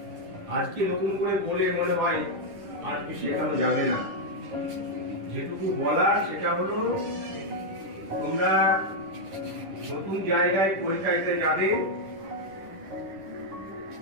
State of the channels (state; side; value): late; left; 10 ms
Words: আজকে নতুন করে বলে মনে হয় আর কি শেখানো যাবে না। যেটুকু বলার সেটা হলো তোমরা নতুন জায়গায় পরীক্ষা দিতে যাবে,